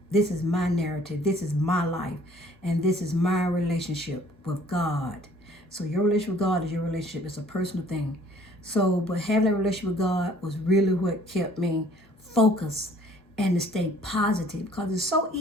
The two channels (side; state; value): both; normal; correlation 0.56